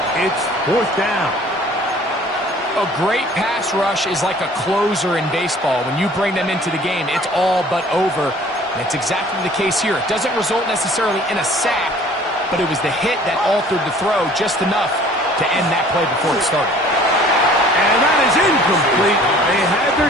It's 4th down. A great pass rush is like a closer in baseball. When you bring them into the game, it's all but over. And it's exactly the case here. It doesn't result necessarily in a sack, but it was the hit that altered the throw just enough to end that play before it started. And that is incomplete. They had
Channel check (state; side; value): normal; both; correlation 0.52